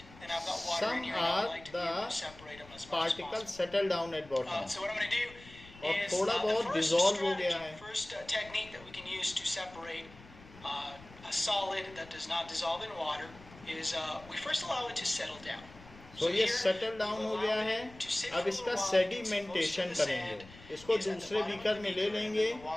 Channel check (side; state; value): left; noise; rumble, 20 dB below the sound